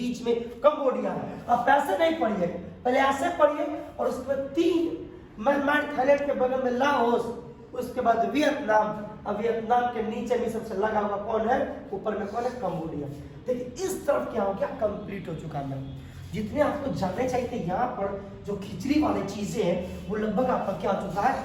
में कंबोडिया है। अब ऐसे नहीं पढ़िए, पहले ऐसे पढ़िए, और उसके बाद 3 म्यांमार, थाईलैंड के बगल में लाओस, उसके बाद वियतनाम, अब वियतनाम के नीचे में सबसे लगा हुआ कौन है? ऊपर में कौन है? कंबोडिया। देखिए इस तरफ क्या हो गया? कंप्लीट हो चुका है। जितने आपको जानने चाहिए थे यहाँ पर जो खिचड़ी वाली चीजें हैं वो लगभग आपका क्या हो चुका है?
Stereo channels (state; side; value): identical; both; correlation 1.00